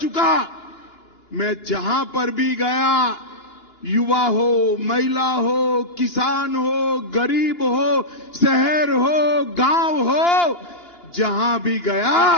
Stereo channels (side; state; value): right; late; 2.9 ms